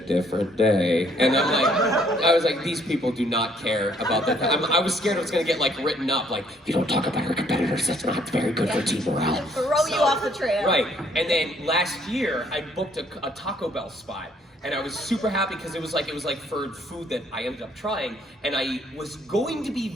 different day. And I was like, these people do not care about that. I was scared it was gonna get like written up, like, you don't talk about our competitors, that's not very good for team morale. Throw you off the trail. Right, and then last year, I booked a Taco Bell spot. And I was super happy because it was like for food that I ended up trying, and I was going to be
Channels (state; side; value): normal; both; correlation 0.65